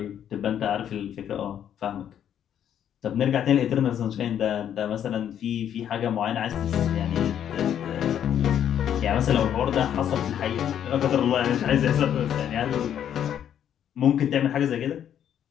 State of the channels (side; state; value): right; quieter; 9.7 dB